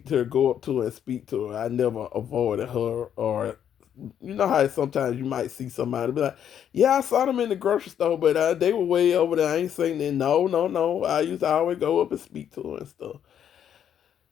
to her, go up to her and speak to her. I never avoided her, or you know how sometimes you might see somebody be like, "Yeah, I saw them in the grocery store, but they were way over there. I ain't saying that." No, no, no. I used to always go up and speak to her and stuff.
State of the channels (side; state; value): right; quieter; 9.3 dB